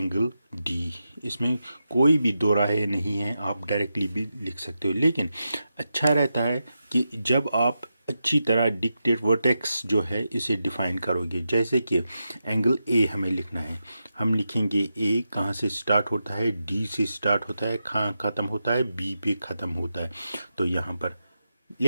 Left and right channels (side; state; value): both; inverted; correlation -0.88